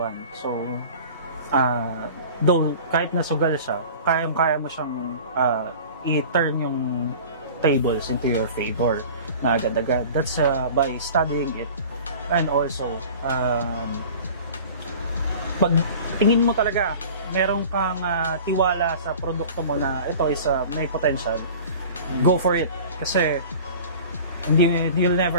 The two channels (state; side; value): inverted; both; correlation -0.41